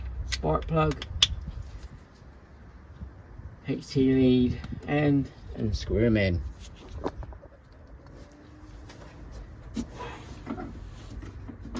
spark plug. HT lead end and screw them in.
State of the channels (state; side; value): identical; both; correlation 1.00